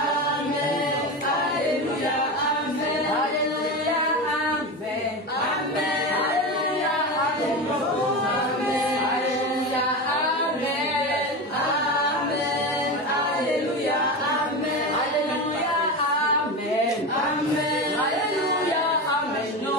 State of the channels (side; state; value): both; normal; correlation 0.22